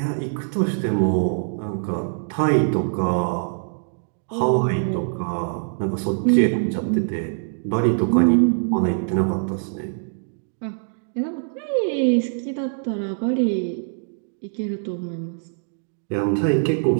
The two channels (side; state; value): left; silent; digital silence